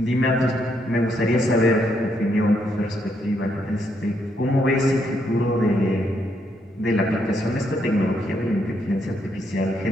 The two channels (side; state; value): both; normal; correlation 0.76